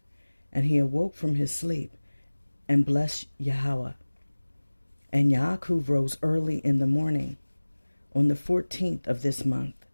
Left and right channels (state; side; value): inverted; both; correlation -1.00